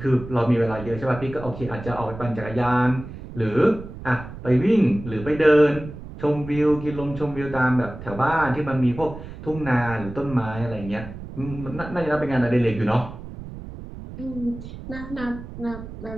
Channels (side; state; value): right; noise; rumble, 12 dB below the sound